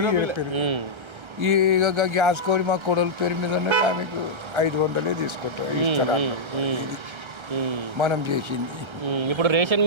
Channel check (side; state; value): left; late; 1.3 ms